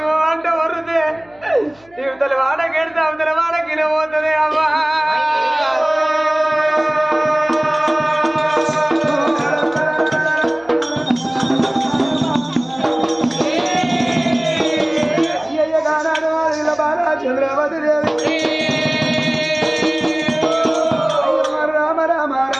అంటే వరుదే ఇవతల వాడకెడితే అవతల వాడకిన పోతుంది అమ్మా చంద్రవతి దేవి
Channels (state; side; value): noise; left; hum, 30 dB below the sound